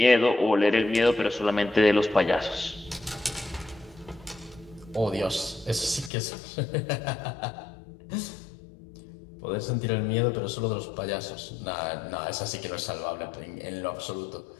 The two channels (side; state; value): right; drops out; at 6.1 s